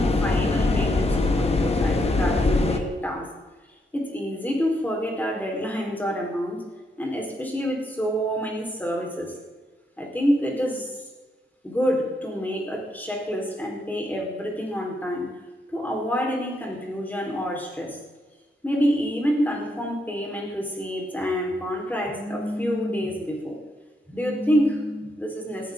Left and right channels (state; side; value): normal; both; correlation 0.78